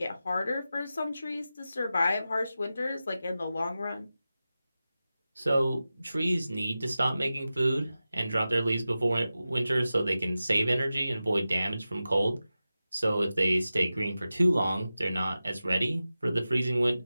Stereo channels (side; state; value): both; inverted; correlation -0.94